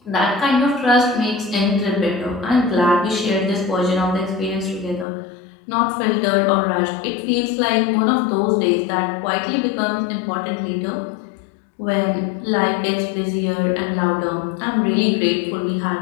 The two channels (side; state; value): right; drops out; at 5.1 s